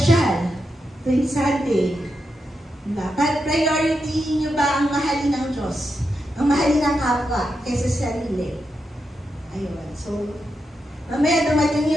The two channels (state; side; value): normal; both; correlation 0.86